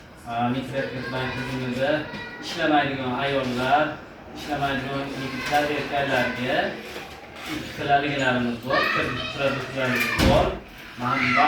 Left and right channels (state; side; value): identical; both; correlation 1.00